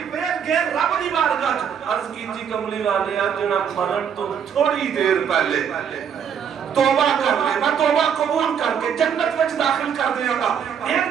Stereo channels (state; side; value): quieter; left; 7.8 dB